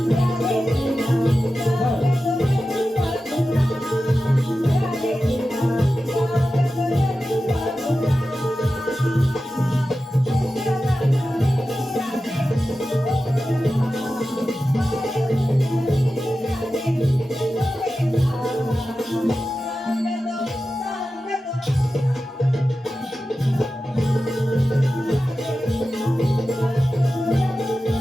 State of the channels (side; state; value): both; normal; correlation 0.93